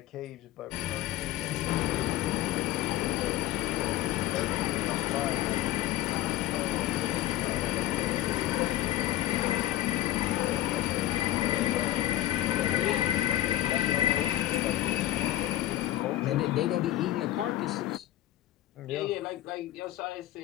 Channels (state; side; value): quieter; right; 13.9 dB